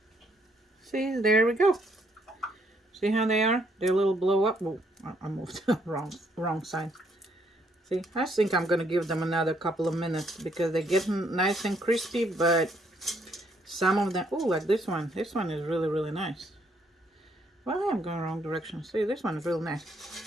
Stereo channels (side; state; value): both; normal; correlation 0.70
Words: See, there we go. See how they are? They're a little blow up. Well, I moved wrong side. See, I think I'm gonna give them another couple of minutes because they're getting nice and crispy, but some of them, oh, like this one. This one is really nice. Well, I'm going wrong direction. See, this one is real nice.